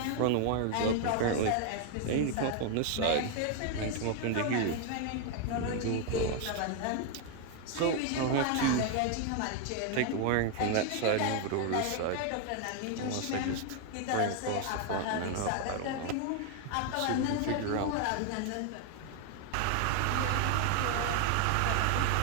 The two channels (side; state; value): both; different; correlation 0.01